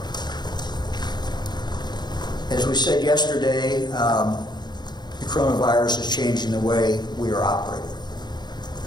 As we said yesterday, the coronavirus is changing the way we are operating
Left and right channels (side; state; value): right; late; 0.21 ms